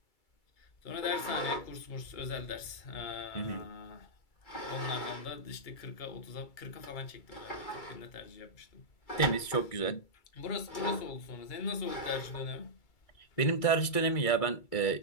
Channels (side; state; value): right; late; 2.3 ms